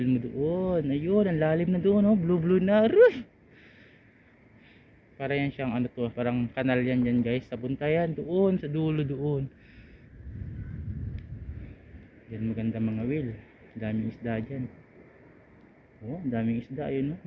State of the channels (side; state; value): both; identical; correlation 1.00